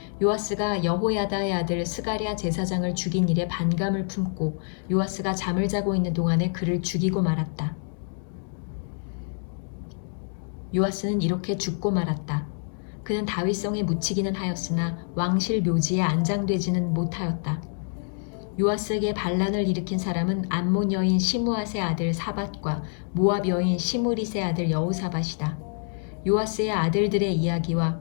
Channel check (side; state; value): right; silent; 57 dB below the other